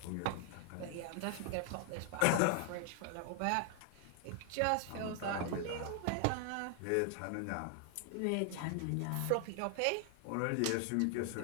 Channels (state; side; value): different; both; correlation 0.00